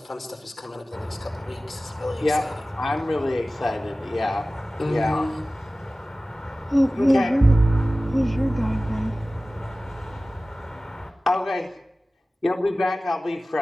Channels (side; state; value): both; normal; correlation 0.97